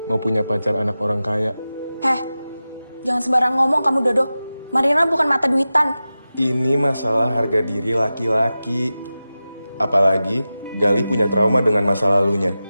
mau punya pacar anak orang kaya. Jangan sembarang ngomong kamu, Dodo. Marlina bukan mata duitan. Ini masalah harga diri laki-laki. Apalagi Galih punya trauma dengan masa lalunya.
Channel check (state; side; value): inverted; both; correlation -0.94